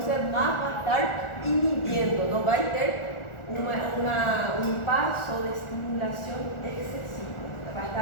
más va a estar inhibiendo, no va a tener un paso de estimulación excesivo, va a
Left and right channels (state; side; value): late; right; 1.4 ms